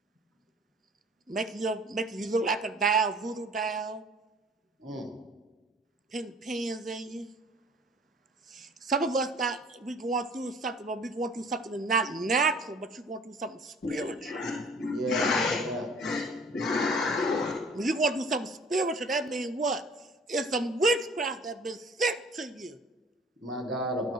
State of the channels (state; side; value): normal; both; correlation 0.51